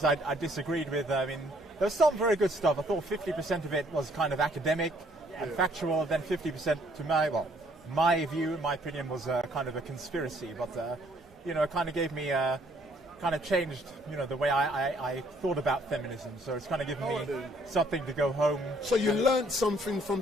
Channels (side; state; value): both; normal; correlation 0.64